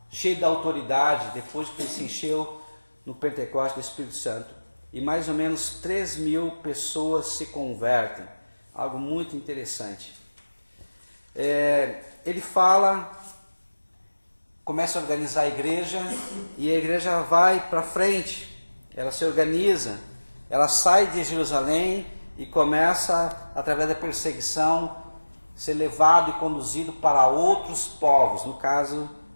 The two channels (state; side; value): inverted; both; correlation -1.00